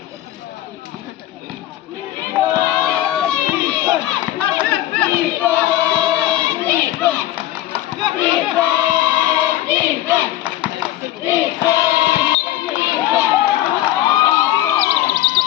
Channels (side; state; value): right; quieter; 14.2 dB